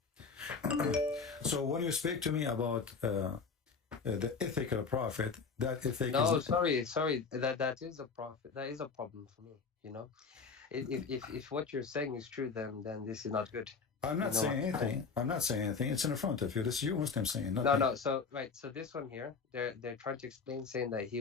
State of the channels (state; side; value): quieter; right; 5.1 dB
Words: So when you speak to me about the ethical prophet, that ethic No, is... sorry. That is a prophet. That is a problem for me. You know, if what you're saying is true, then this is not good. I'm not saying anything. I'm not saying anything. It's in front of you. This is you Muslim saying. Not me. No. So right. So this one here, they're trying to explain, saying that